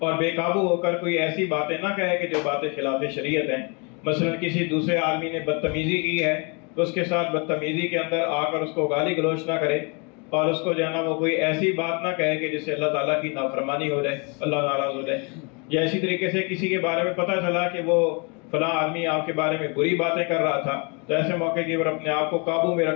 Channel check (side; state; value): right; quieter; 32.9 dB